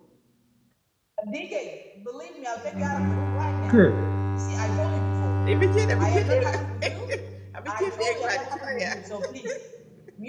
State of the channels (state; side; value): identical; both; correlation 1.00